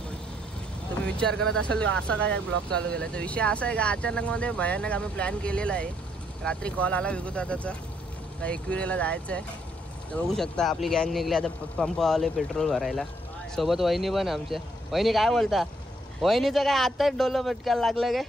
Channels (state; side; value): normal; both; correlation 0.71